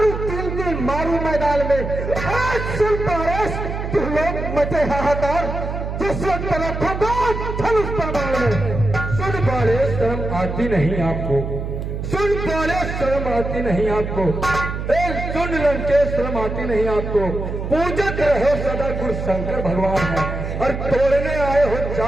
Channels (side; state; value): right; noise; hum, 5 dB below the sound